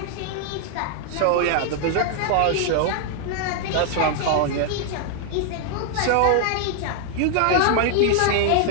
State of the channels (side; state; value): both; different; correlation 0.00